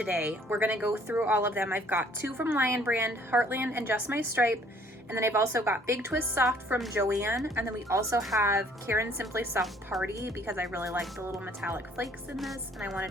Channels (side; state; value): both; normal; correlation 0.59